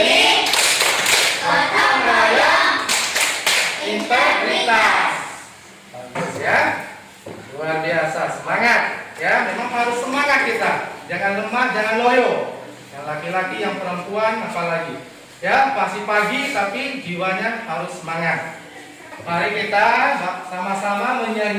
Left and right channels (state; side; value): identical; both; correlation 1.00